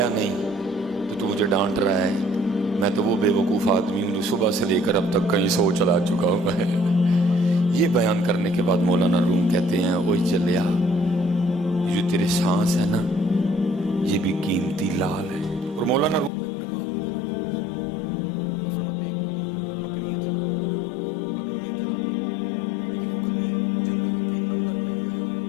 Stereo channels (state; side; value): drops out; right; at 16.3 s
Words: نہیں تو مجھے ڈانٹ رہا ہے، میں تو وہ بے وقوف آدمی ہوں جو صبح سے لے کر اب تک کہیں 100 چلا چکا ہوں میں۔ یہ بیان کرنے کے بعد مولانا روم کہتے ہیں اوئے چلیا، یہ جو تیرے سانس ہے نا یہ بھی قیمتی لال ہے۔ اور مولانا روم نے کمال لکھا حضرت اس کو، فرماتے ہیں کوئی بکریاں چرانے والا روز بکریاں چرانے، لیکن وہ کبھی جنگل کے اندر نہیں گیا